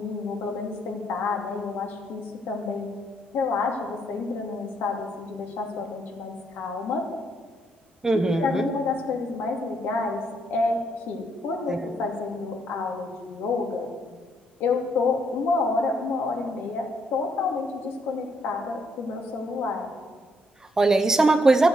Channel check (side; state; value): both; normal; correlation 0.73